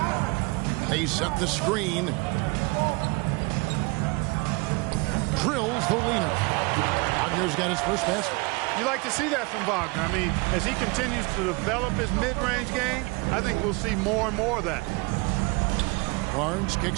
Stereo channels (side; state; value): left; quieter; 27.4 dB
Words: They set the screen. Drills the leaner. Wagner's got his first basket. You like to see that from Wagner. I mean, as he continues to develop his mid-range game, I think we'll see more and more of that. Barnes